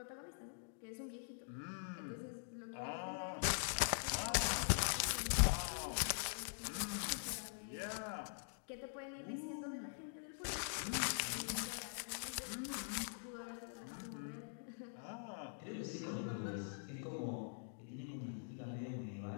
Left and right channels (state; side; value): silent; right; digital silence